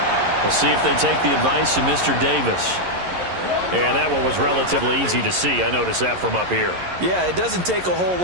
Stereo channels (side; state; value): left; late; 11 ms